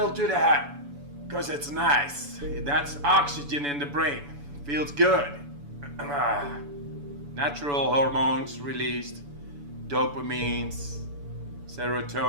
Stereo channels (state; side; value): late; left; 7.0 ms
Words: to the head. Because it's nice. That's oxygen in the brain. Feels good. Natural hormones released. Dopamines.